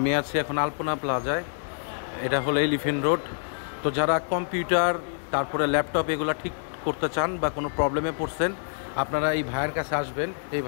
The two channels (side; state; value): right; silent; digital silence